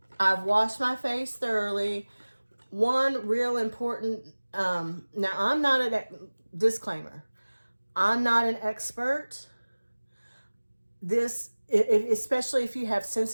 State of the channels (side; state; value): both; inverted; correlation -1.00